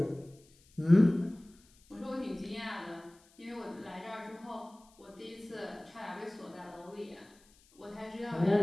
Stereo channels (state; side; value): noise; left; hiss, 29 dB below the sound